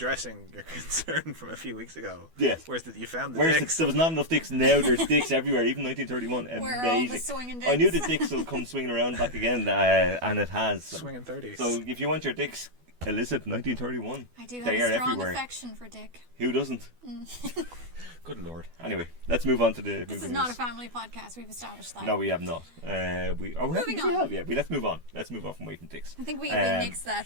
your concern from a few weeks ago. Yes. Where's you found the Whereas dicks? there was not enough dicks, now there's dicks everywhere, even 1931. Where are all the Amazing. swinging I knew dicks? the dicks will come swinging around back again, and it has. Swinging 30s. So if you want your dicks, illicit 1931. I do have They a are strong everywhere. affection for Dick. Who doesn't? Good lord. Anyway, let's move on to the This movie is not a news. family podcast. We've established that. No, we have not. Moving on. Let's move on. Let's move on from waiting dicks. I think we nixed that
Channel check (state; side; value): late; left; 12 ms